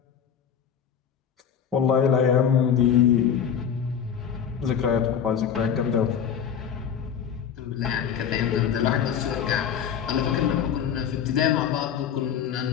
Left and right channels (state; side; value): quieter; right; 8.1 dB